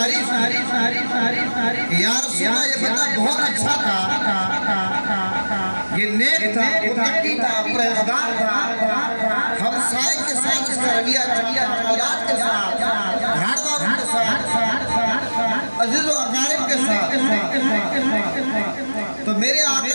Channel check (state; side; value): inverted; both; correlation -1.00